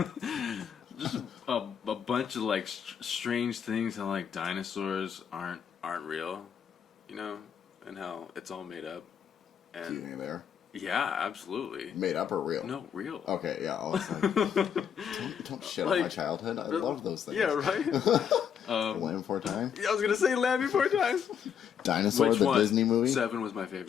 just a bunch of, like, strange things how, like, dinosaurs aren't real, and how it's all made up. And Do you think they are? Yeah, absolutly. Made up or real? No, real. Okay, yeah. I was like, don't shit on my childhood. I love those things. Yeah, right? Land Before Time? Yeah, I was going to say Land Before Time. Dinosaur, Which the one? Disney movie? 7 was my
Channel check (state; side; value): quieter; right; 8.0 dB